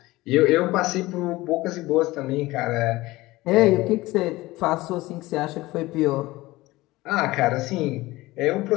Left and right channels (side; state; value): right; quieter; 19.3 dB